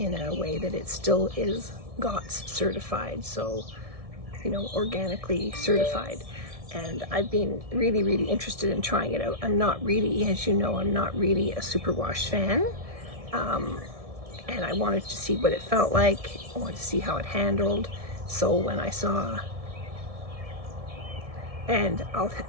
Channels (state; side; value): late; left; 1.7 ms